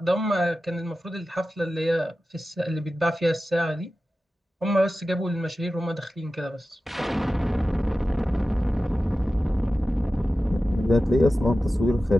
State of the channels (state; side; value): normal; both; correlation 0.94